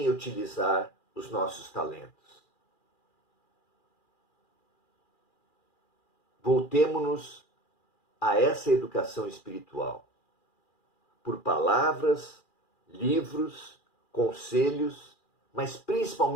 utilizar os nossos talentos. Voltemo-nos a essa educação espiritual, por palavras, livros, conselhos, mas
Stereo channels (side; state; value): right; late; 2.4 ms